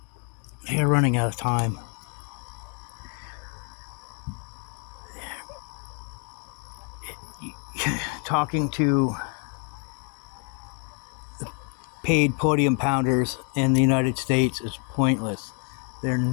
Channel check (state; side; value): quieter; right; 39.5 dB